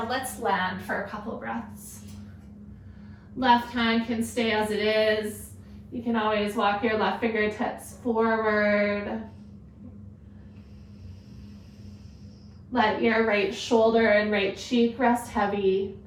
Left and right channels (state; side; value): identical; both; correlation 1.00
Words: let's land for a couple breaths. Left hand can stay as it is. You can always walk your left fingertips forward. Let your right shoulder and right cheek rest heavy.